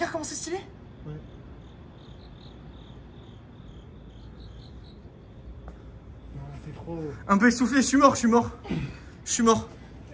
comment c'est stylé. Ouais. Non, c'est trop... Un peu essoufflé, je suis mort.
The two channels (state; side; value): identical; both; correlation 1.00